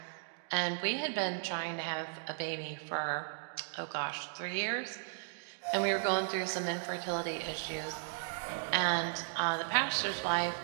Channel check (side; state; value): left; silent; digital silence